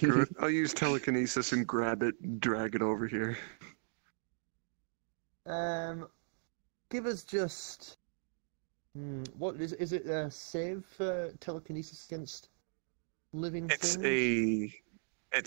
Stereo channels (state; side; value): silent; left; digital silence